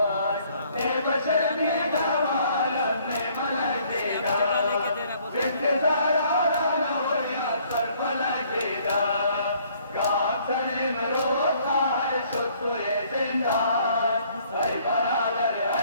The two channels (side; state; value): both; inverted; correlation -0.62